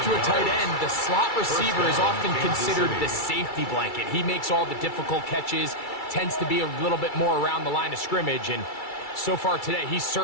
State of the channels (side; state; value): right; late; 2.3 ms